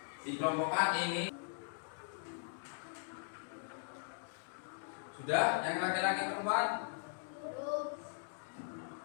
dikelompokkan ini. Sudah, yang laki-laki perempuan?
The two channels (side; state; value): right; silent; digital silence